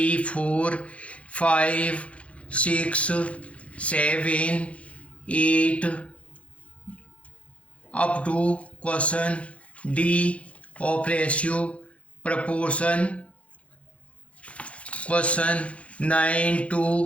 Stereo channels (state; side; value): late; right; 0.063 ms